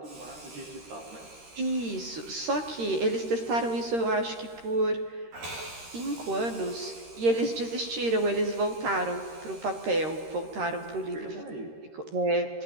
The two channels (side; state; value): left; late; 13 ms